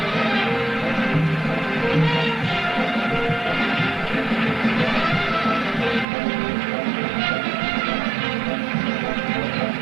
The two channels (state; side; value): drops out; left; at 6.1 s